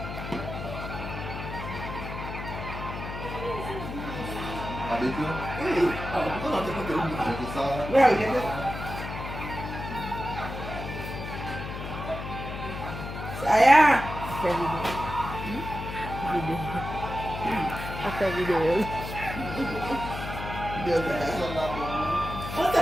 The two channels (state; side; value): noise; left; hum, 7 dB below the sound